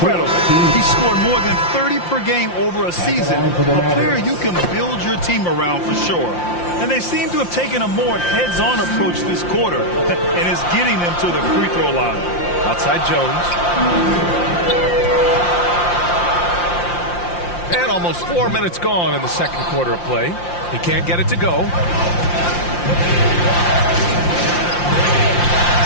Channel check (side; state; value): right; late; 5.7 ms